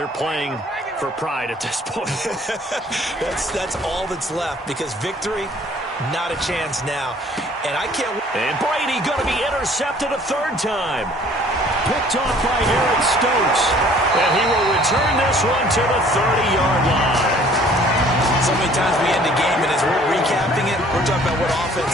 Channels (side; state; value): both; normal; correlation 0.55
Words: playing for pride at this point. That's all that's left because victory, not a chance now. And I can't. And Brady going to be intercepted a third time. Picked off by Eric Stokes. And he will return this one to the 30-yard line. So many times we end the game, and as we're recapping it, we're talking about what